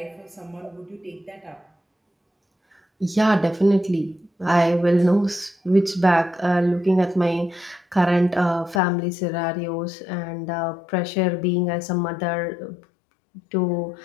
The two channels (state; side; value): drops out; right; at 8.8 s